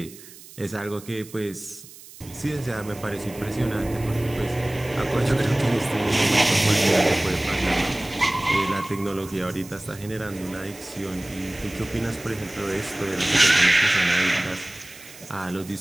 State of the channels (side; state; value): right; noise; hiss, 19 dB below the sound